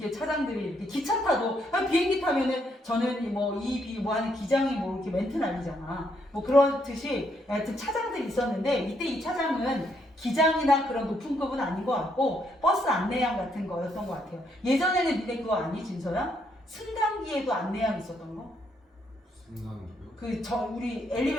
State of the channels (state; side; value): normal; both; correlation 0.74